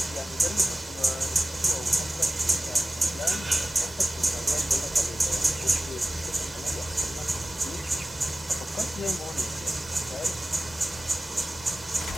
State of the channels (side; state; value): both; normal; correlation 0.96